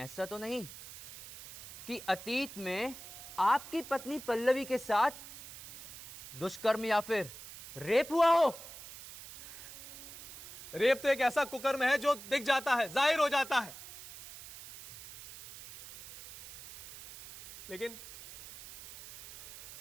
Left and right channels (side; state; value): right; noise; hiss, 14 dB below the sound